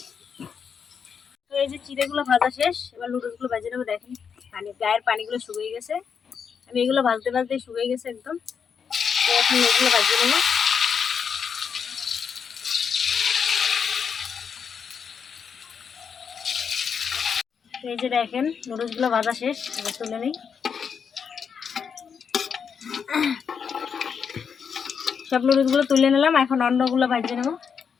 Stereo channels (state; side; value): quieter; right; 6.7 dB